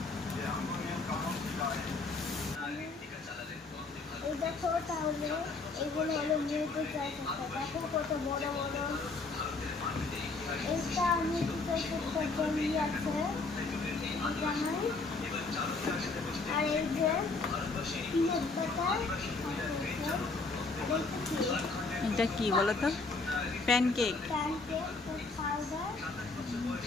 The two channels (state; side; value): quieter; right; 3.8 dB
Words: এই দেখো তাহলে এগুলো হলো নিউট্রি চয়েস একটা। দেখো কত বড় বড়। এইটা নিউট্রি চয়েস একটা জেলি আছে এখানে। আর এই যে পিনাট বাটার এটা কি বলো তো? প্যানকেক। Pancake powder.